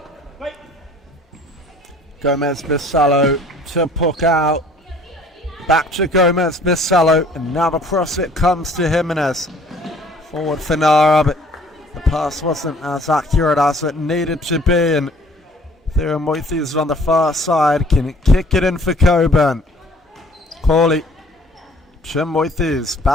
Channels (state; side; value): normal; both; correlation 0.55